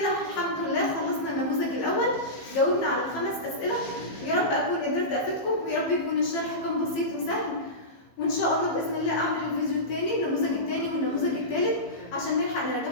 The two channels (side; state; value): right; late; 15 ms